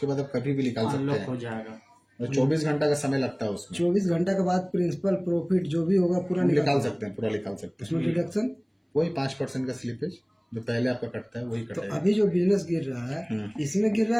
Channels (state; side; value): identical; both; correlation 1.00